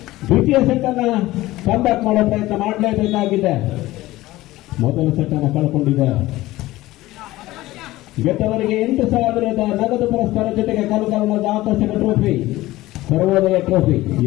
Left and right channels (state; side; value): quieter; right; 17.4 dB